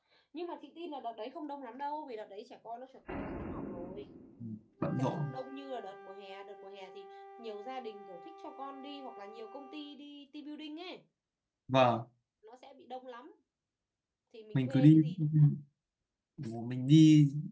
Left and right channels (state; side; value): identical; both; correlation 1.00